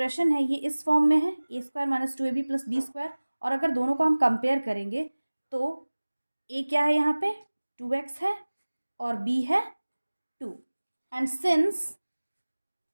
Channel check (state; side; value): inverted; both; correlation -1.00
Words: है ये इस फॉर्म में है a square minus 2ab plus b square, और अगर दोनों को हम कंपेयर करेंगे तो a क्या है यहाँ पे? 2x है और b है 2, and since